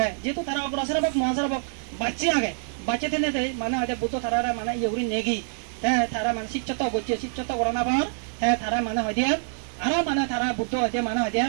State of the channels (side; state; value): left; silent; digital silence